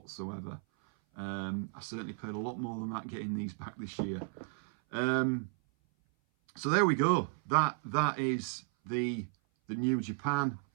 I certainly paid a lot more than that getting these back this year. So there we go. That is the new Japan.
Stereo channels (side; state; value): left; silent; 55 dB below the other